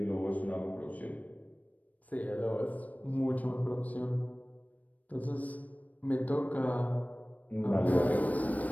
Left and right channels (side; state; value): right; late; 0.072 ms